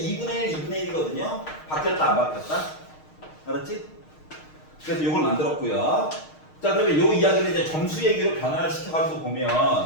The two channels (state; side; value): late; right; 6.5 ms